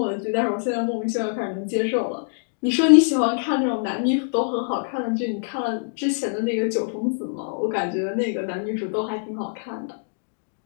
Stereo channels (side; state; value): right; silent; digital silence